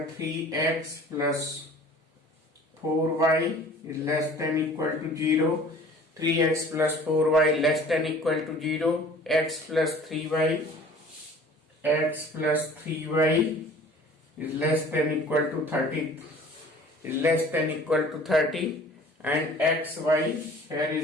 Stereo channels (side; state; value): both; normal; correlation 0.48